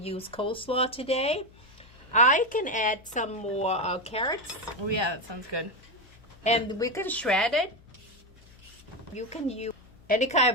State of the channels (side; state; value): left; noise; hum, 25 dB below the sound